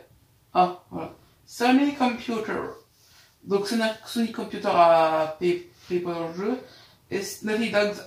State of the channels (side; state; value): both; identical; correlation 1.00